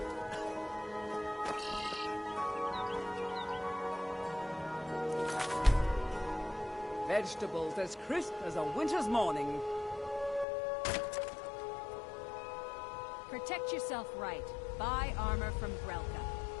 Vegetables as crisp as a winter's morning. Protect yourself right. Buy armor from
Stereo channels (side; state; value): right; drops out; at 10.5 s